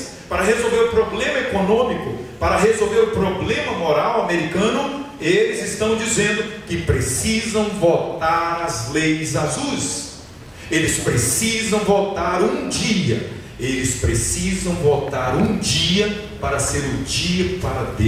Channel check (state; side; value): identical; both; correlation 1.00